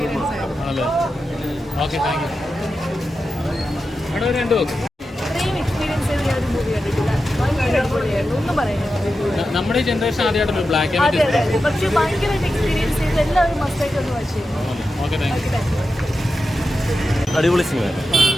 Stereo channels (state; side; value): normal; both; correlation 0.91